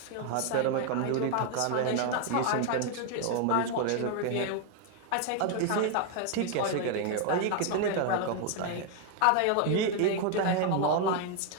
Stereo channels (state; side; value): different; both; correlation 0.01